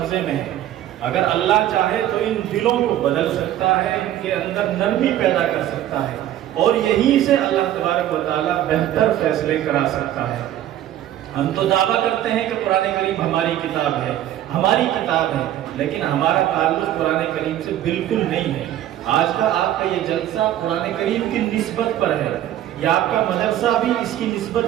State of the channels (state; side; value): quieter; left; 12.4 dB